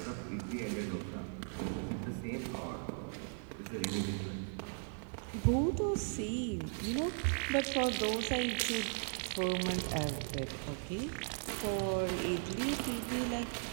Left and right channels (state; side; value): silent; left; 53 dB below the other